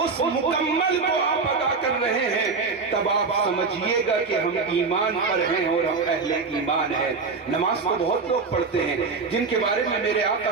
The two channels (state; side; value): quieter; left; 4.6 dB